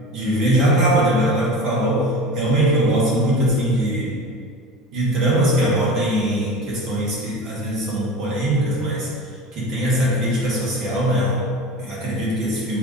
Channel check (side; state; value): both; normal; correlation 0.33